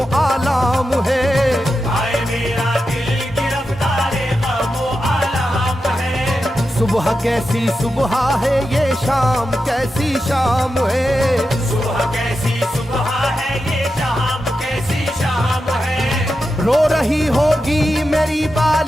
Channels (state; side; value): normal; both; correlation 0.89